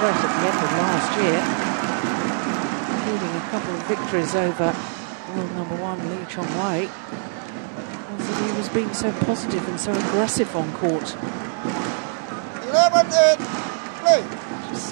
at the end of last year, including a couple of victories over world #1 Lee Chong-wei, was that he was being so positive and so aggressive on court. 11-8, play. Just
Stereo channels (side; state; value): left; silent; 63 dB below the other